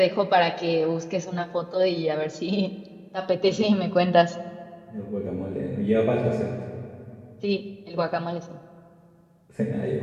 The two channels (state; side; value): identical; both; correlation 1.00